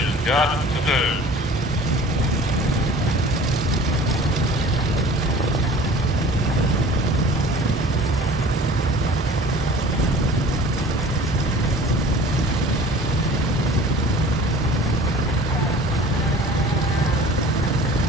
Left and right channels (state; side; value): normal; both; correlation 0.45